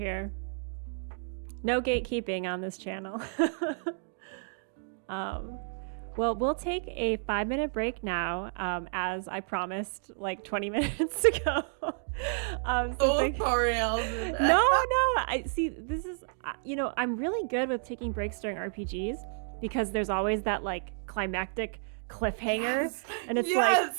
No gatekeeping on this channel. Well, we'll take a 5-minute break now, as I promised like 20 minutes ago. Sorry, Alvin. No. I see. This is, I'm really good with taking breaks during RPGs because there's always that like climactic cliffhanger, and it's like,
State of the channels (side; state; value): left; silent; digital silence